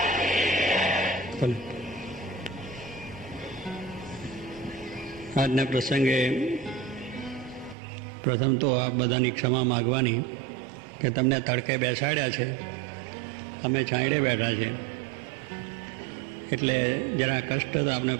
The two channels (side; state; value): left; drops out; at 7.8 s